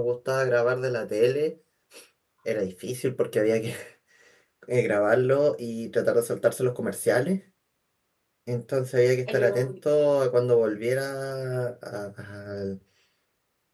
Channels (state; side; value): identical; both; correlation 1.00